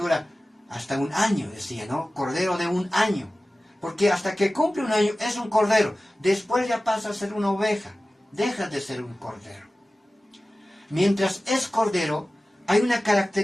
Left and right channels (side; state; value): both; normal; correlation 0.96